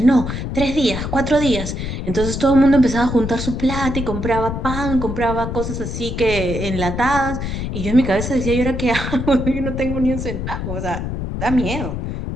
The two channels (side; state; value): left; noise; rumble, 4 dB below the sound